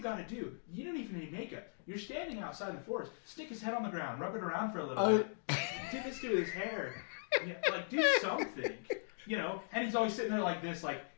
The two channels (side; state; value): right; silent; digital silence